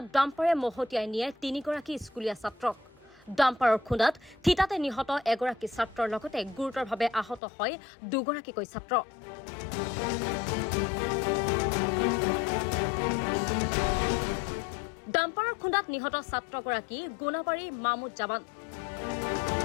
ডাম্পাৰে মহতিয়াই নিয়ে তিনিগৰাকী স্কুলীয়া ছাত্ৰক। ডাম্পাৰৰ খুন্দাত থিতাতে নিহত এগৰাকী ছাত্ৰৰ লগতে গুৰুতৰভাৱে আহত হয় দুগৰাকীকৈ ছাত্ৰ। ডাম্পাৰৰ খুন্দাত নিহত ছাত্ৰগৰাকী গোনাবাৰী মামুদ জামান।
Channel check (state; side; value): drops out; right; at 7.4 s